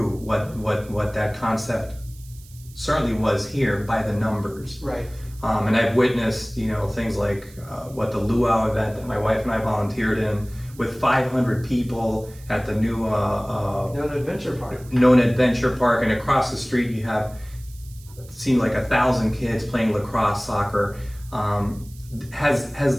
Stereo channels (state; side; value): noise; right; hiss, 23 dB below the sound